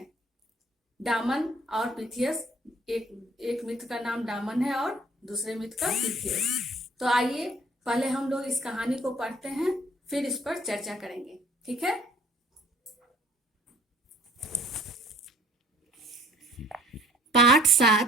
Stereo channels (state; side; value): normal; both; correlation 0.55